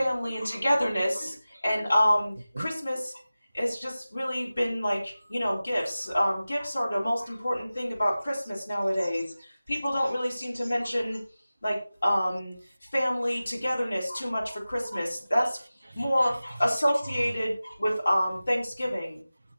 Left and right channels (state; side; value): inverted; both; correlation -0.96